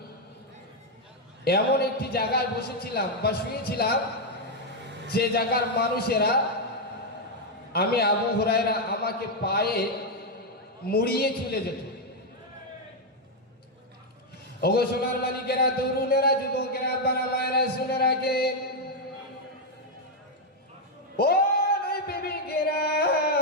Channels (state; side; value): normal; both; correlation 0.01